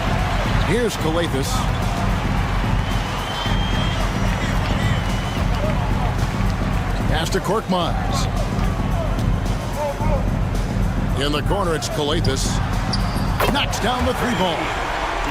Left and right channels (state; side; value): identical; both; correlation 1.00